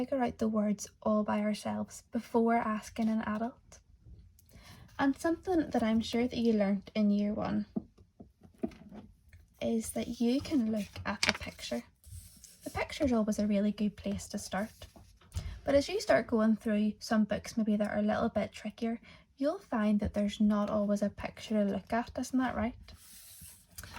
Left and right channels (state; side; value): identical; both; correlation 1.00